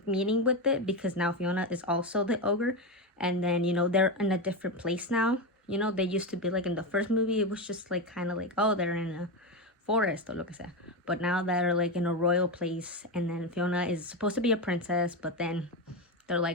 meaning with it, because now Fiona is also the ogre, and then they're in a different place now. They used to be like in the first movie, it was just like kind of like, oh, they're in a forest or lo que sea, but now they're like in a royal place, and then Fiona is supposed to be a princess, but then they're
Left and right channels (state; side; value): normal; both; correlation 0.13